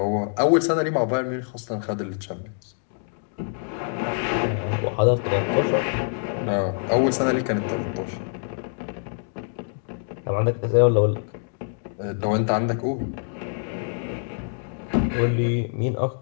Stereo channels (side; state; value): right; silent; digital silence